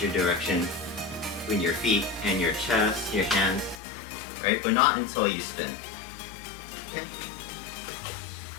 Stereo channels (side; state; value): right; drops out; at 3.8 s